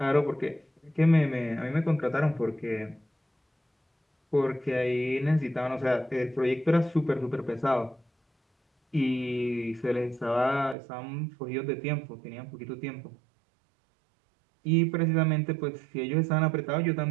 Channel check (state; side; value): drops out; left; at 10.8 s